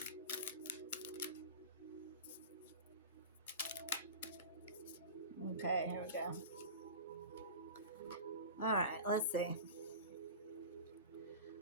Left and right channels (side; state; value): both; inverted; correlation -0.33